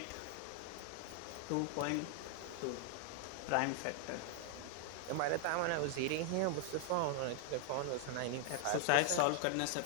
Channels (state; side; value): different; both; correlation 0.00